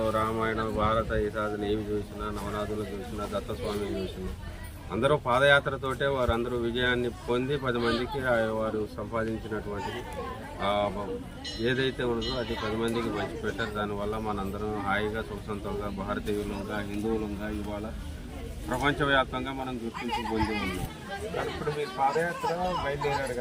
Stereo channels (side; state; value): both; identical; correlation 1.00